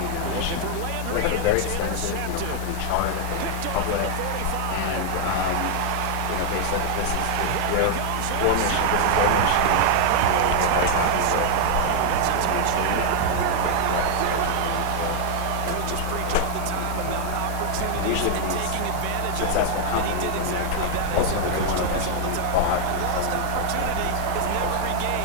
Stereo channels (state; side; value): different; both; correlation 0.00